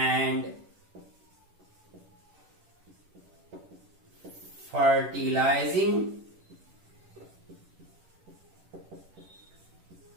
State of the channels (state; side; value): late; left; 10 ms